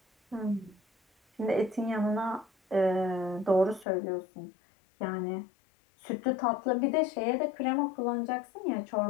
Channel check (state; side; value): drops out; right; at 3.9 s